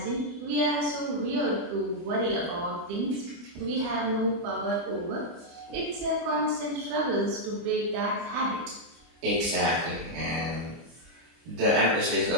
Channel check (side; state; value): left; late; 24 ms